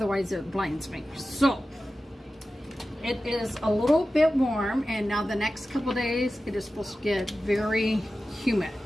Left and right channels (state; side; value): normal; both; correlation 0.94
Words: it blinds me. So it is a little bit warm, and now the next couple days it is supposed to get very humid,